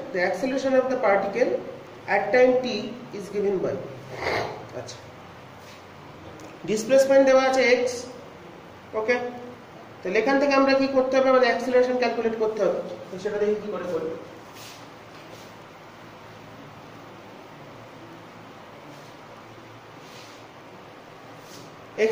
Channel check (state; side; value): identical; both; correlation 1.00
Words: the acceleration of the particle at time t is given by আচ্ছা ডিসপ্লেসমেন্ট দেওয়া আছে x ওকে তাহলে এখান থেকে আমরা কি করতে হবে আমাদের অ্যাক্সিলারেশন ক্যালকুলেট করতে হবে তো সেটা দেখি কি করে করব x